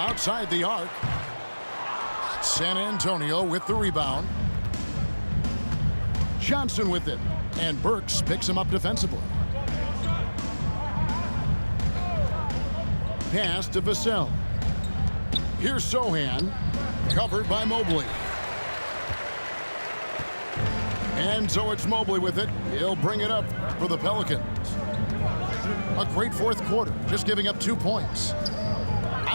the arc. San Antonio with the rebound. Johnson with it. And Burks picks him up defensively. Pass to Vassell. Here's Sohan, covered by Mobley. And so it's Mobley with it. He'll bring it up for the Pelicans. A great fourth quarter, just giving up 2 points.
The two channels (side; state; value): both; inverted; correlation -1.00